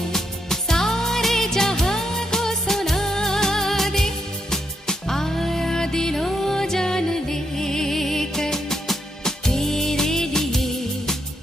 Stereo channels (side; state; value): both; normal; correlation 0.79